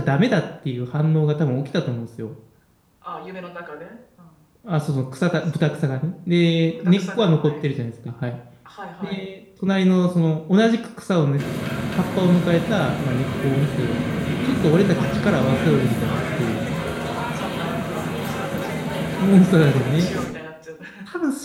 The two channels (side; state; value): both; identical; correlation 1.00